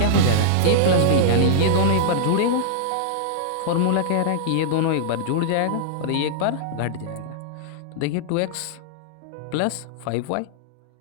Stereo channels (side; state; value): both; different; correlation -0.02